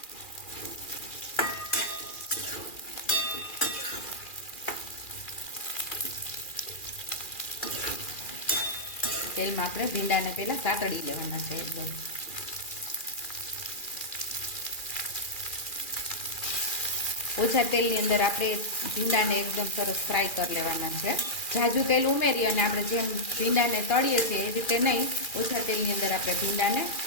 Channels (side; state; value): right; late; 2.4 ms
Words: તેલમાં આપણે ભીંડાને પહેલા સાતળી લેવાના છે એકદમ। ઓછા તેલની અંદર આપણે ભીંડાને એકદમ સરસ ફ્રાય કરી લેવાના છે। ઝાઝું તેલ ઉમેરી અને આપણે જેમ ભીંડાને તળીએ છીએ એ રીતે નહીં, ઓછા તેલની અંદર આપણે ભીંડાને